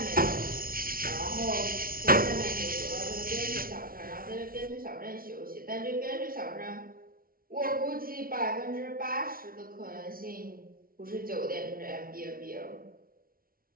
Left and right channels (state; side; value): late; left; 0.43 ms